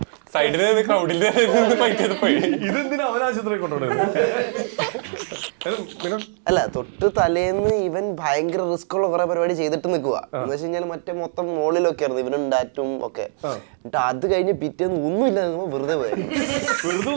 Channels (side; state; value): left; silent; digital silence